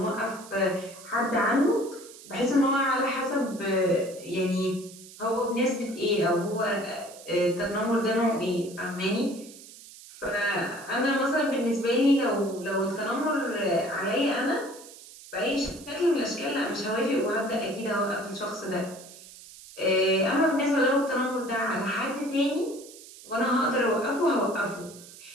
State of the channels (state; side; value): noise; right; hiss, 18 dB below the sound